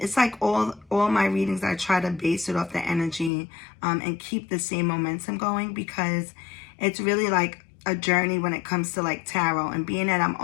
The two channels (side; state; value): right; drops out; at 3.3 s